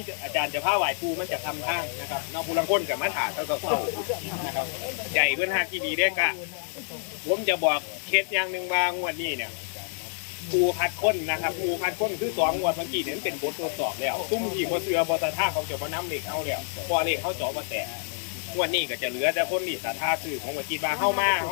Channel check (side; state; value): right; silent; digital silence